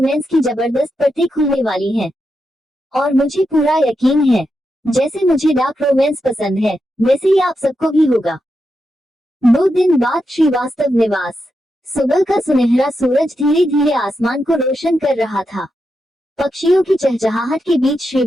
की जबरदस्त परतें खुलने वाली हैं। और मुझे पूरा यकीन है, जैसे मुझे डार्क रोमांस पसंद है, वैसे ही आप सबको भी होगा। 2 दिन बाद श्रीवास्तव निवास। सुबह का सुनहरा सूरज धीरे धीरे आसमान को रोशन कर रहा था। पक्षियों की चहचहाहट के बीच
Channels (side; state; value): both; normal; correlation 0.86